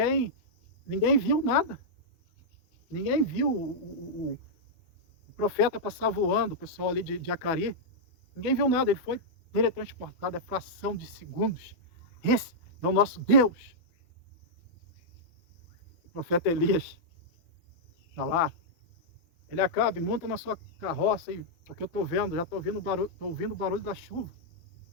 viu nada. Ninguém viu o profeta passar voando, o pessoal ali de Acari. Ninguém viu nada, ele foi teletransportado, é fração de segundos. Esse é o nosso Deus. O profeta Elias está lá. Ele acaba, monta na sua carroça, porque eu estou vendo, já estou ouvindo o barulho da chuva.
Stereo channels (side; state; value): right; late; 12 ms